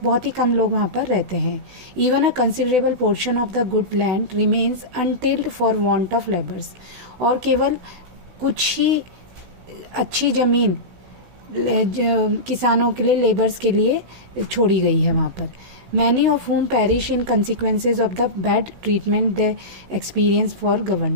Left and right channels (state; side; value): late; left; 16 ms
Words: बहुत ही कम लोग वहाँ पर रहते हैं। Even a considerable portion of the good land remains untilled for want of labours. और केवल कुछ ही अच्छी ज़मीन किसानों के लिए, लेबर्स के लिए छोड़ी गई है वहाँ पर। Many of whom perish in consequences of the bad treatment they experience for